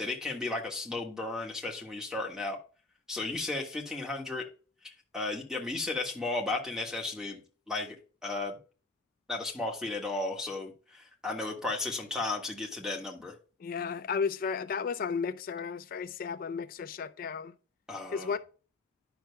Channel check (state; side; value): quieter; right; 3.3 dB